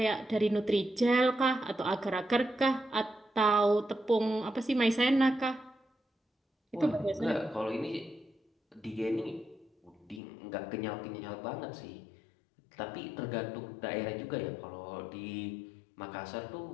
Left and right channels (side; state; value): right; drops out; at 10.2 s